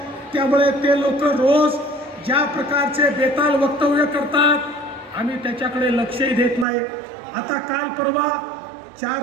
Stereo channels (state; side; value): drops out; left; at 6.7 s